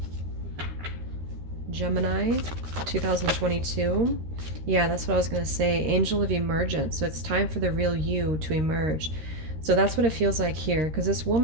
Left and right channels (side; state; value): left; late; 13 ms